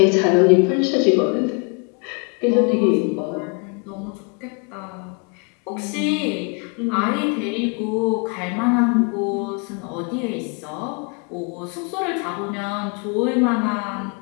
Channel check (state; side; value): quieter; right; 34.5 dB